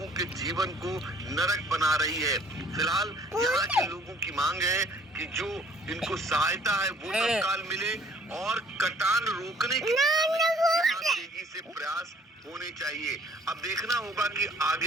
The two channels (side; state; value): both; normal; correlation 0.57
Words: के जीवन को नरक बना रही है। फिलहाल यहाँ के लोगों की मांग है कि जो इनको सहायता है वो तत्काल मिले और कटान रोकने की तेजी से प्रयास होने चाहिए। अब देखना होगा कि